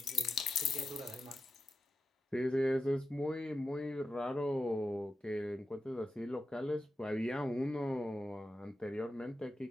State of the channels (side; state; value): both; normal; correlation 0.90